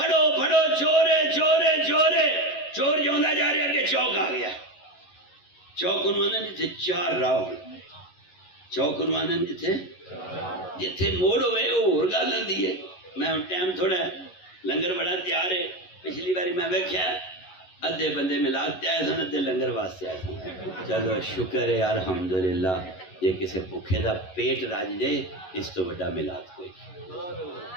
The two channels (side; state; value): right; late; 11 ms